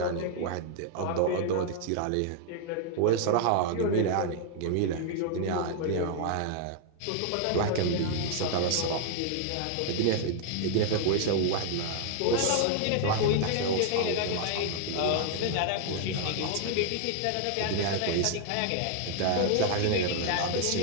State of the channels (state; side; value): different; both; correlation 0.00